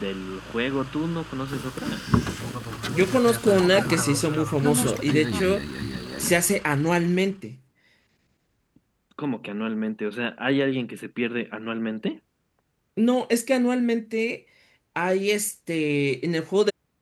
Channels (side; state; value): both; identical; correlation 1.00